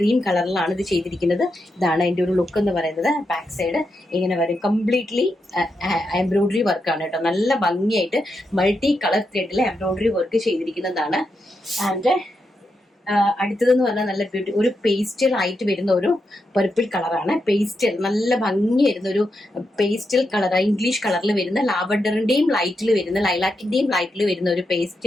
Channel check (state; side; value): normal; both; correlation 0.85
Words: കളറിലാണ് ഇത് ചെയ്തിരിക്കുന്നത്. ഇതാണ് അതിന്റെ ഒരു ലുക്ക് എന്ന് പറയുന്നത്. ബാക്ക് സൈഡ് ഇങ്ങനെ വരും, കംപ്ലീറ്റ്ലി എംബ്രോയിഡറി വർക്കാണ് കേട്ടോ. നല്ല ഭംഗിയായിട്ട് മൾട്ടി കളർ ത്രെഡിൽ എംബ്രോയിഡറി വർക്ക് ചെയ്തിരിക്കുന്നതാണ്. ആൻഡ് അടുത്തതെന്ന് പറഞ്ഞാൽ നല്ല ഒരു പേസ്റ്റൽ ആയിട്ട് വരുന്ന ഒരു പർപ്പിൾ കളറാണ്. പേസ്റ്റൽ നല്ല ഭംഗി വരുന്ന ഒരു പേസ്റ്റൽ കളർ, ഇംഗ്ലീഷ് കളറിൽ വരുന്ന ലാവൻഡറിന്റെയും ലൈറ്റിൽ വരുന്ന ലൈലാക്കിന്റെയും ലൈറ്റിൽ വരുന്ന ഒരു